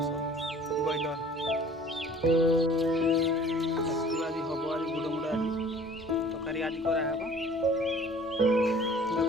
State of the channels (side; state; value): both; normal; correlation 0.50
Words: बॉयलर आज हम आज गुड़ मुड़ आज तकारी आज कराब